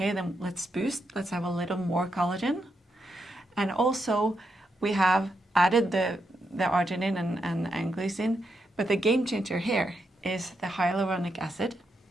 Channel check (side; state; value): both; normal; correlation 0.82